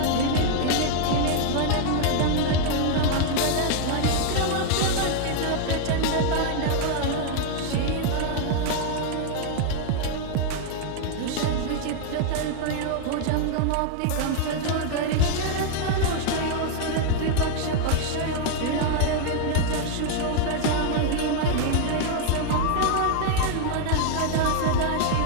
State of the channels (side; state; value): both; different; correlation 0.00